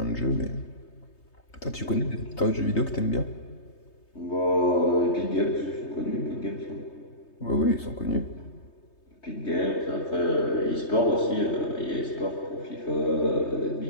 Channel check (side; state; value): right; late; 3.2 ms